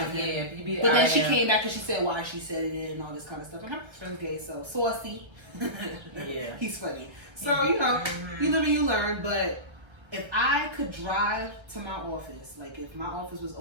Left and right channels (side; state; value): left; late; 1.3 ms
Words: yeah. But then she came back and she said why she said it and all this kind of stuff. And her son's gay, so saucy. Yeah. He's funny. So, you know, you live and you learn, but if I could drive to my office, like if my office was